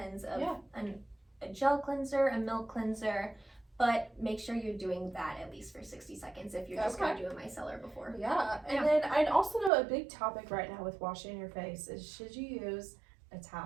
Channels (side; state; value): left; drops out; at 9.7 s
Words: of a gel cleanser, a milk cleanser, but make sure you're doing that at least for 60 seconds if you're just going to do a micellar before. And then I'd also know a big topic right now with washing your face is, should you use a